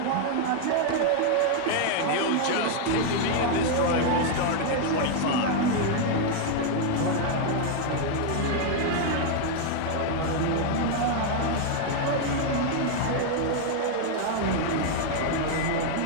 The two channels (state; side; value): different; both; correlation 0.00